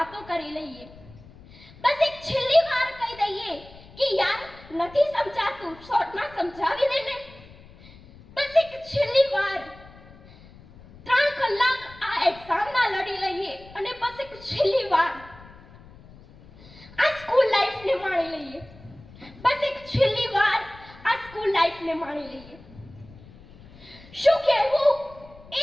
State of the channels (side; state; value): left; noise; rumble, 21 dB below the sound